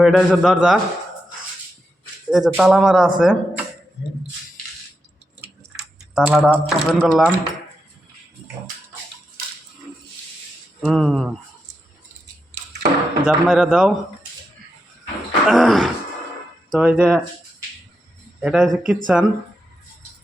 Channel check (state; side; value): normal; both; correlation 0.85